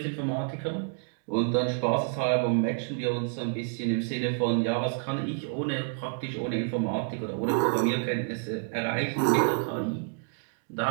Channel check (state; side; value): silent; left; 59 dB below the other